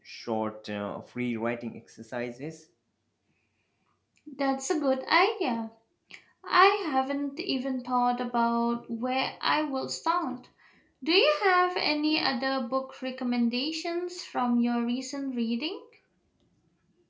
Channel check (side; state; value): both; identical; correlation 1.00